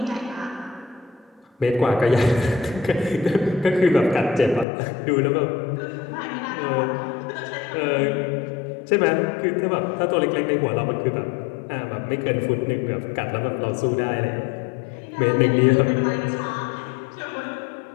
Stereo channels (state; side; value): drops out; right; at 4.7 s